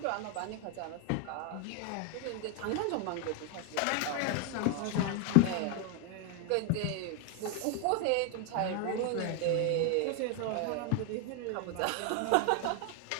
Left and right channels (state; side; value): different; both; correlation 0.00